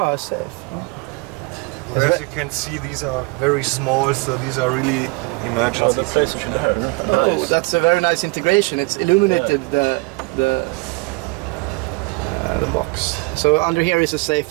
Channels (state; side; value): quieter; left; 27.6 dB